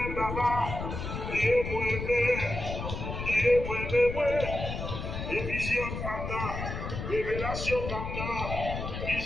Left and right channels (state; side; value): noise; left; rumble, 5 dB below the sound